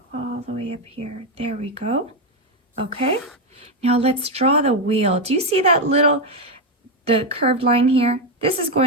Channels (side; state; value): both; normal; correlation 0.07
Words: all the way up here. There we go. Okay, now let's draw the wheel. Do you see that the curved line here? This is